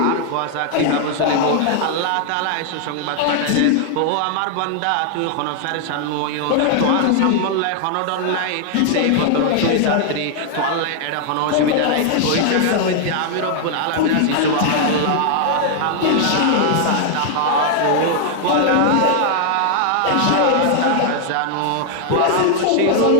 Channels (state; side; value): different; both; correlation 0.00